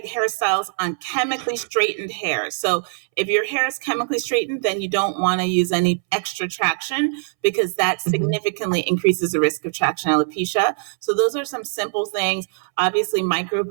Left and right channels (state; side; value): silent; left; 64 dB below the other